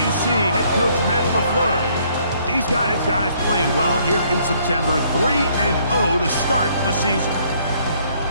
see head coach Matt LaFleur. He's got his guys playing well here in September, 3-0 to start the season.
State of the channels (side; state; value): both; inverted; correlation -0.65